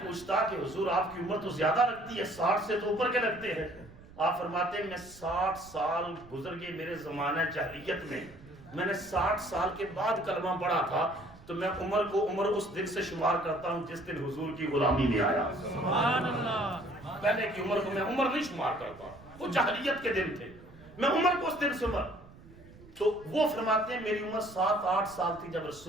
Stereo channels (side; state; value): right; noise; rumble, 21 dB below the sound